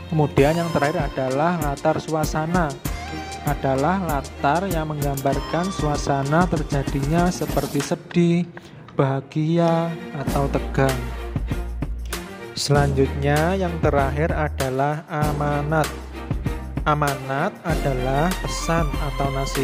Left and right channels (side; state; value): both; identical; correlation 1.00